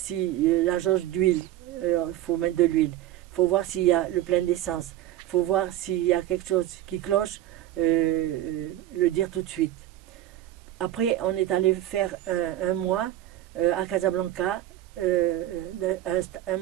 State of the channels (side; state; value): left; quieter; 13.6 dB